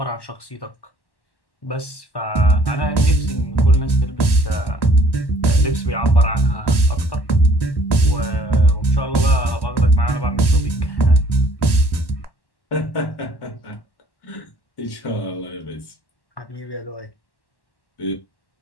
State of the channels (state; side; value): late; right; 1.1 ms